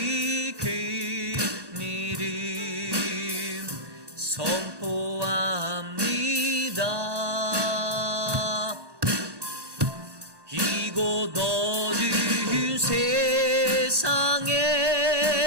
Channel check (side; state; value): left; late; 1.2 ms